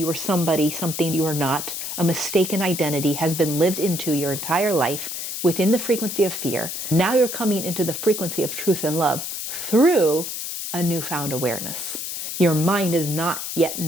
were somebody, something you were not. A mistaken identity has been lived into your entire life within the frequency of fear. Now you're coming into the frequency of truth and love through a newfound awareness. Your mind does not yet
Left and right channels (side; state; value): left; noise; hiss, 5 dB below the sound